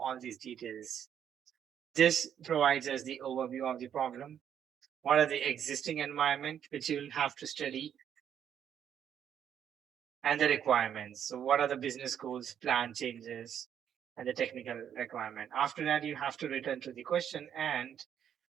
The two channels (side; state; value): left; quieter; 9.1 dB